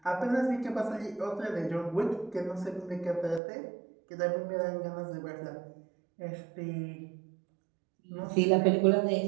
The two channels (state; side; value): drops out; left; at 3.4 s